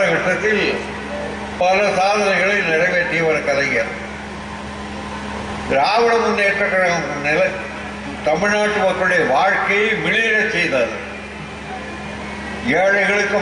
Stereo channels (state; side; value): identical; both; correlation 1.00